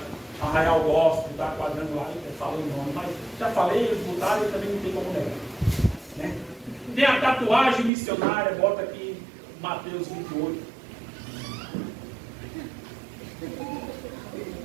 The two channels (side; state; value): left; drops out; at 7.9 s